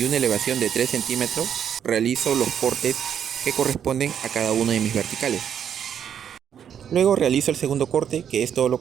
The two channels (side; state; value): left; quieter; 8.7 dB